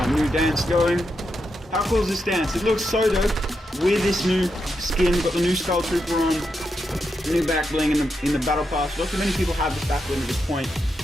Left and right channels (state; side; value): normal; both; correlation 0.85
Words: new dance going. How cool is this dance? It looks so dope with this new skin. Got the new Skull Trooper on, new back bling in the battle pass. Not too many people have this back bling at this point.